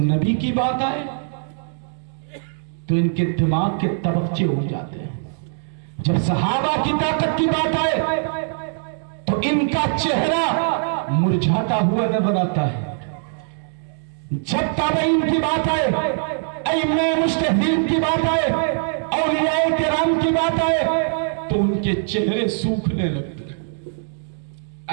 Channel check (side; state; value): left; silent; digital silence